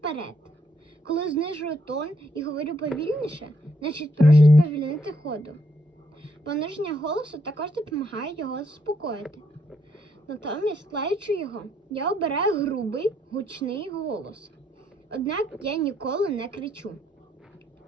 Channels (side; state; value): both; normal; correlation 0.73